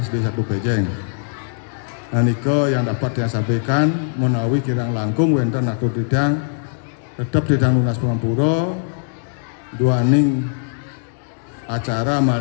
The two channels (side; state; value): right; silent; digital silence